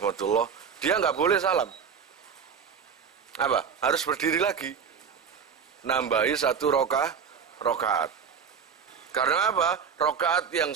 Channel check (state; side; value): quieter; left; 6.7 dB